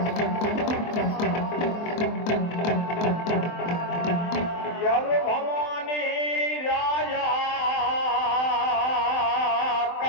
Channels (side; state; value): right; late; 23 ms